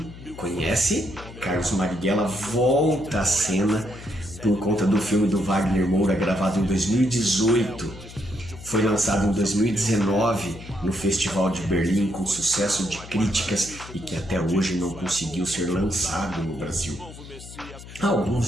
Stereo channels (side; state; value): left; noise; hum, 15 dB below the sound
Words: Conhece? Carlos Marighella volta à cena por conta do filme do Wagner Moura, gravado em 2018. Foi lançado em 2019 no Festival de Berlim com sucesso de críticas e que até hoje não conseguiu ser lançado no Brasil.